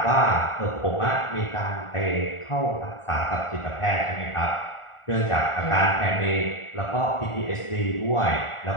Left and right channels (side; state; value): right; late; 1.4 ms